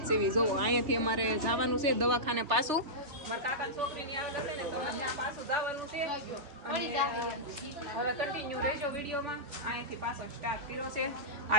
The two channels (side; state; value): left; late; 3.3 ms